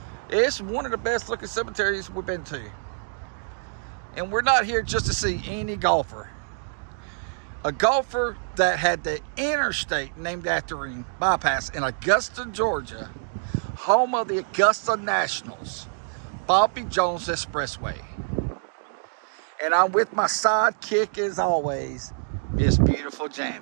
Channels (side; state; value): left; silent; digital silence